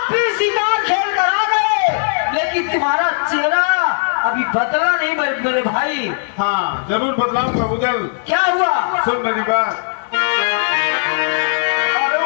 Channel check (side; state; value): right; silent; 68 dB below the other